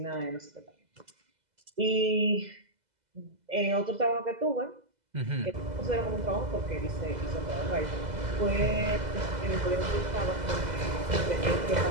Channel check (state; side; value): late; left; 2.0 ms